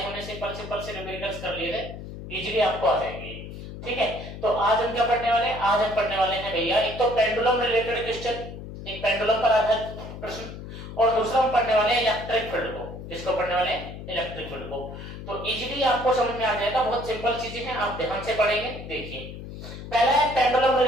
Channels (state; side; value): noise; left; hum, 11 dB below the sound